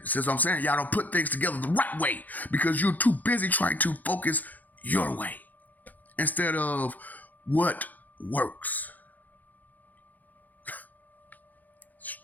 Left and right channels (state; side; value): late; right; 0.082 ms